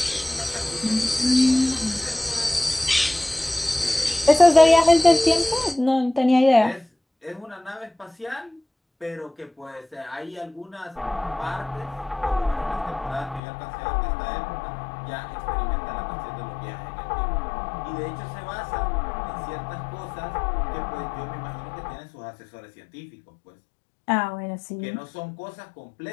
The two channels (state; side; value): drops out; right; at 13.4 s